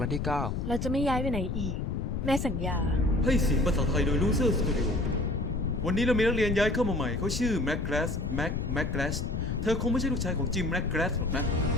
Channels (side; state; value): left; noise; rumble, 2 dB below the sound